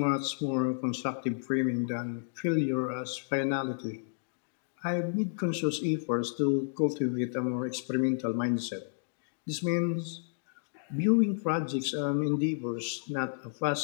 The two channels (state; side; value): silent; right; digital silence